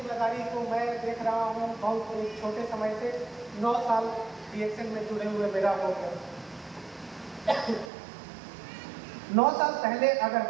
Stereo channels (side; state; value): left; drops out; at 7.9 s